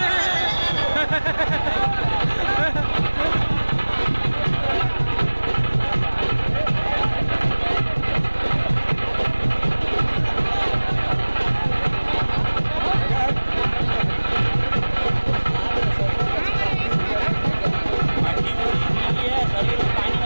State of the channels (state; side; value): inverted; both; correlation -1.00